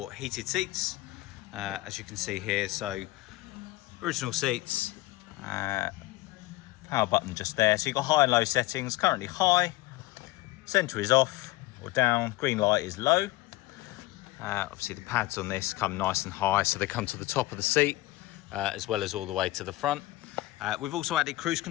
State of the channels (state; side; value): quieter; right; 18.1 dB